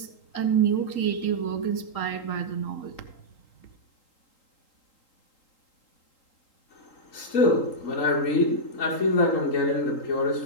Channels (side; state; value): right; late; 3.8 ms